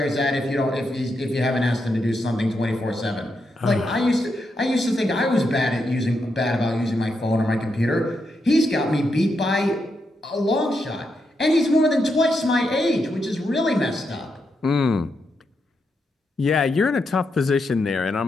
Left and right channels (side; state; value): both; normal; correlation 0.83